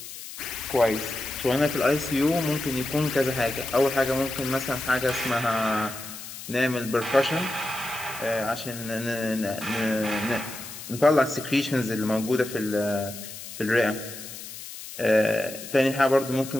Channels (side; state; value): left; noise; hiss, 12 dB below the sound